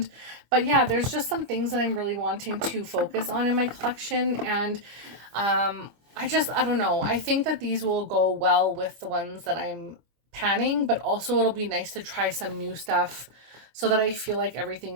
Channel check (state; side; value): late; left; 25 ms